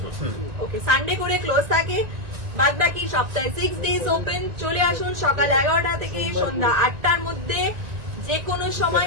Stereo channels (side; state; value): left; late; 1.9 ms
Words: ওকে, সানডে করে ক্লোজ থাকে, বাদ বাকি সপ্তাহে 6 ডেজ ওপেন। চলে আসুন সকাল 11টা থেকে সন্ধ্যা 8টার মধ্যে, যে কোনো সময়